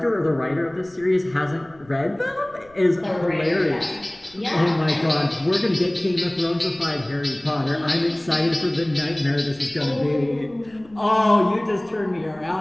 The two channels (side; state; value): left; noise; rumble, 28 dB below the sound